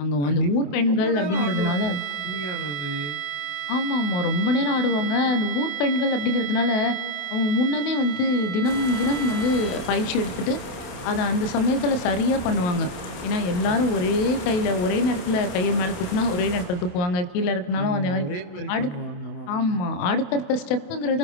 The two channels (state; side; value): late; right; 27 ms